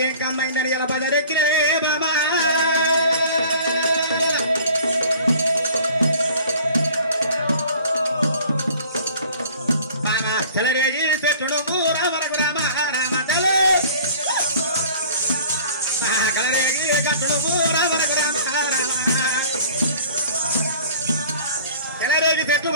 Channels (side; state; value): both; inverted; correlation -0.48